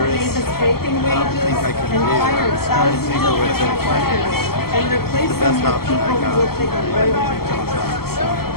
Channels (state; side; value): late; right; 0.95 ms